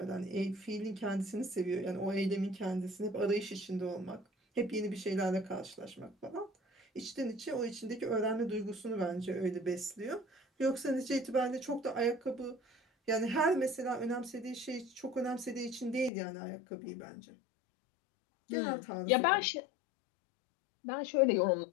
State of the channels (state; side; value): drops out; right; at 16.1 s